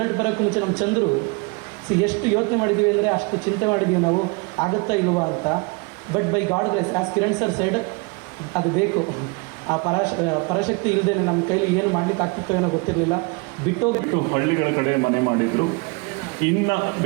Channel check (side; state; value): left; quieter; 30.0 dB